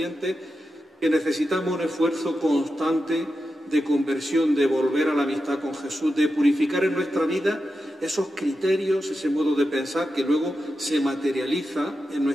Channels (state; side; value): normal; both; correlation 0.89